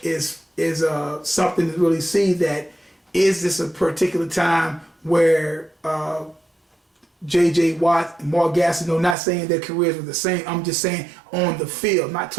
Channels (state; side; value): drops out; left; at 9.2 s